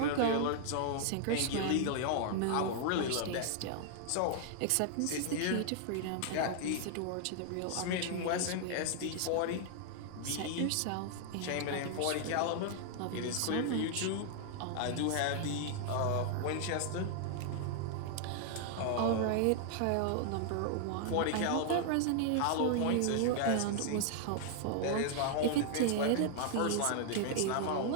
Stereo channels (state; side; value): different; both; correlation 0.00